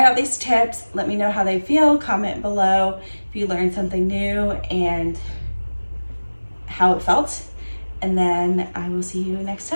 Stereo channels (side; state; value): both; inverted; correlation -1.00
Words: out these tips, let me know how they feel, comment below if you learned something new and how it felt. And then I will see you next